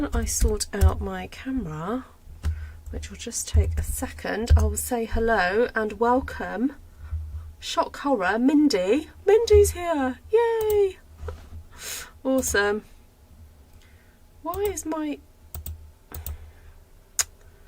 I sort out my camera, which will just take a second, I will say hello and welcome. Shock horror, Mindy. Mindy's here. Yay! Awesome. Why is I'm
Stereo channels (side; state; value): both; identical; correlation 1.00